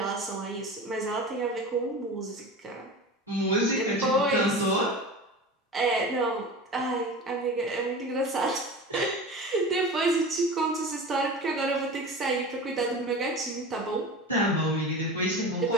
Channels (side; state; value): both; normal; correlation 0.32